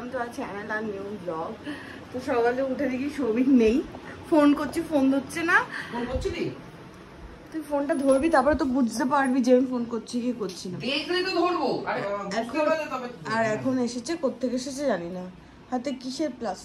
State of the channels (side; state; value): both; identical; correlation 1.00